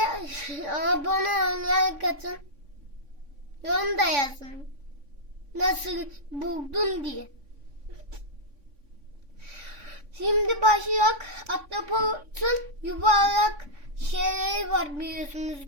abone olmayı katın. Yorum da yazın. Nasıl buldun diye. Şimdi başlayak. Ahtapotun yuvarlak şeyleri var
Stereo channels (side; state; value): left; late; 3.6 ms